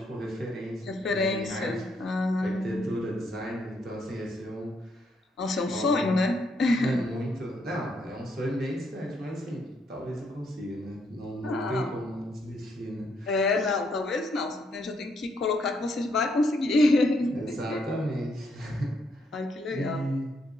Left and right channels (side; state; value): both; normal; correlation 0.74